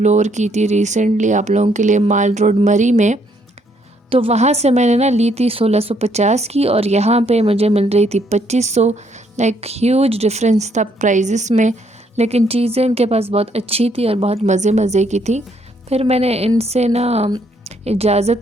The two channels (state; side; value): normal; both; correlation 0.70